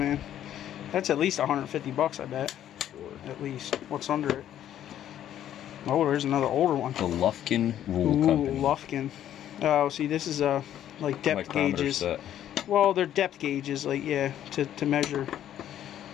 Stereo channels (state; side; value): quieter; right; 11.2 dB